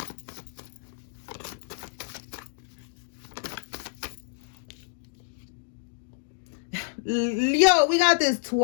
Yo, we got this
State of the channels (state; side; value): silent; right; digital silence